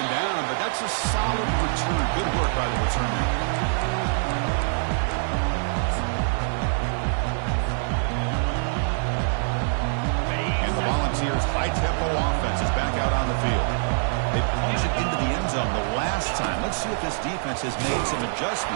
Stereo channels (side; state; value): left; silent; 61 dB below the other